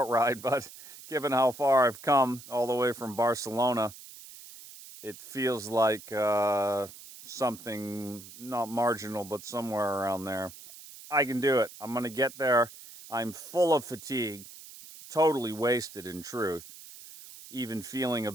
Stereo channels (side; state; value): right; noise; hiss, 17 dB below the sound